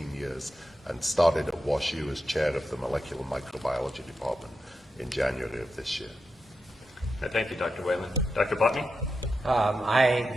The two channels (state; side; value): normal; both; correlation 0.88